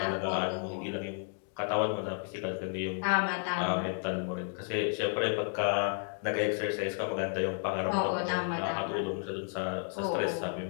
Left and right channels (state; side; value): silent; right; 56 dB below the other